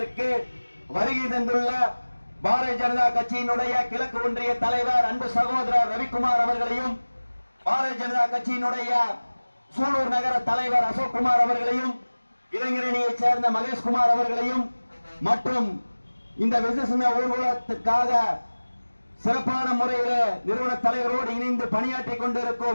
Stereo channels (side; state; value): both; inverted; correlation -1.00